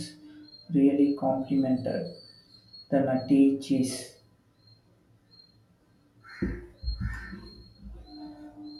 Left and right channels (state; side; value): identical; both; correlation 1.00